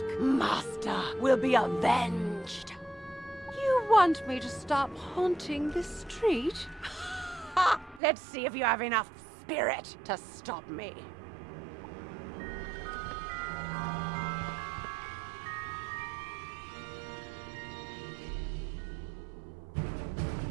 Master will be avenged. You want me to stop haunting this street? Ha! Let's see if you have enough spirit to stop me.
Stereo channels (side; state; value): left; drops out; at 8.0 s